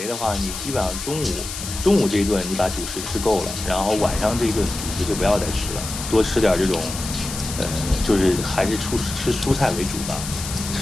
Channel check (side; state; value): left; noise; hiss, 8 dB below the sound